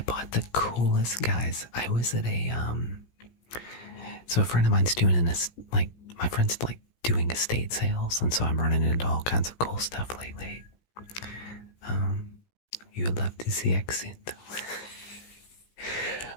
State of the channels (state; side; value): late; right; 17 ms